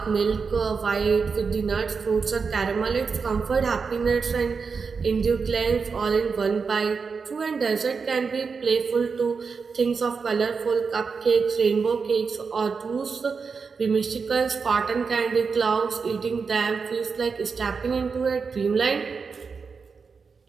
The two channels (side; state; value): left; quieter; 5.2 dB